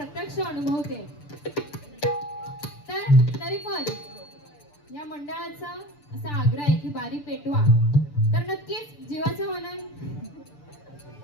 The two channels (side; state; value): right; late; 6.8 ms